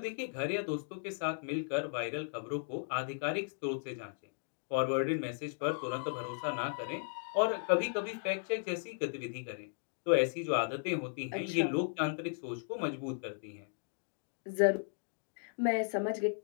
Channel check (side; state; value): right; silent; digital silence